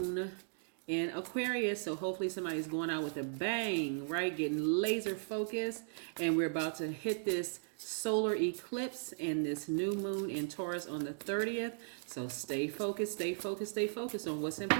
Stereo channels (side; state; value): left; silent; digital silence